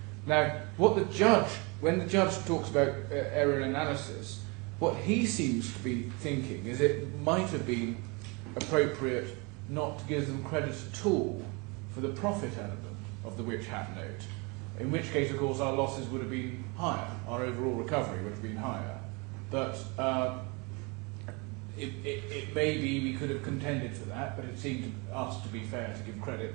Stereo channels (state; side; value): quieter; left; 29.2 dB